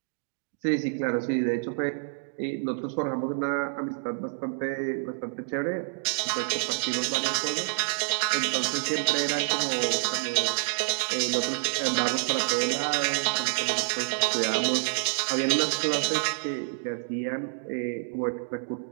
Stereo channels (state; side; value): silent; left; digital silence